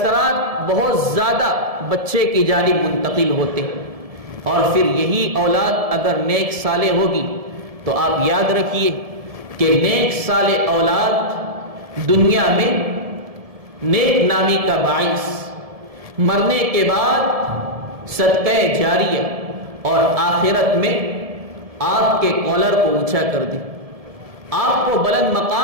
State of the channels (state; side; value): late; left; 1.7 ms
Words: بہت زیادہ بچے کی جانب منتقل ہوتے ہیں، اور پھر یہی اولاد اگر نیک صالح ہوگی تو آپ یاد رکھیے کہ نیک صالح اولاد دنیا میں نیک نامی کا باعث، مرنے کے بعد صدقہ جاریہ، اور آخرت میں آپ کے کالر کو اونچا کر دے، آپ کو بلند